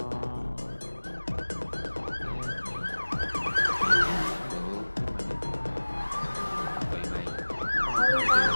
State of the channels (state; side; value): inverted; both; correlation -1.00